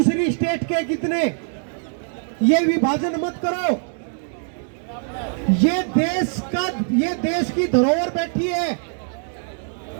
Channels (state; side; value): silent; left; 64 dB below the other